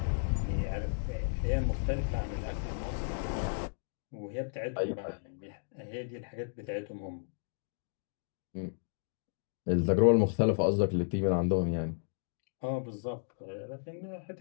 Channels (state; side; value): silent; right; digital silence